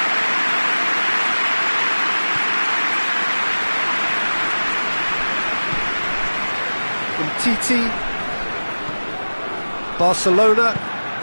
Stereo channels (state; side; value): inverted; both; correlation -1.00